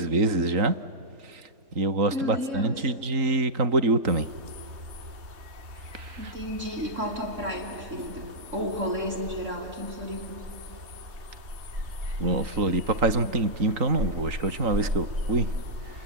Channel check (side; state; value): left; late; 3.8 ms